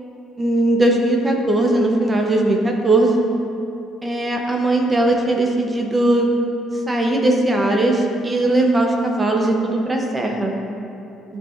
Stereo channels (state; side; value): normal; both; correlation 0.74